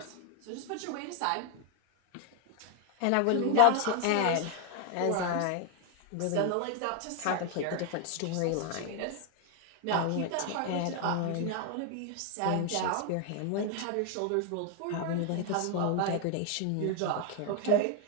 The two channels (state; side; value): different; both; correlation 0.01